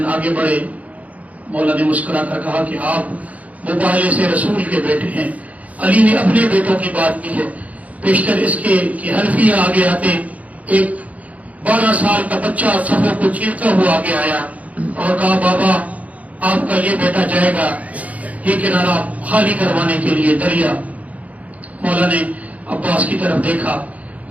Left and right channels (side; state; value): left; late; 0.070 ms